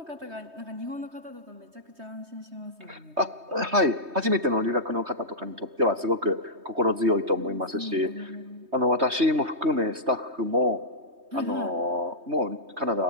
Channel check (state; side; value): late; left; 3.2 ms